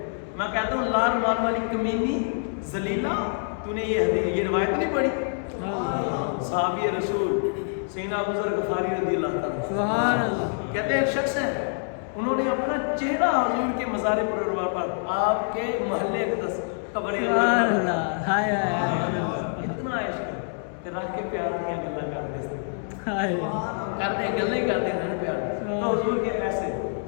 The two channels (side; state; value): right; silent; digital silence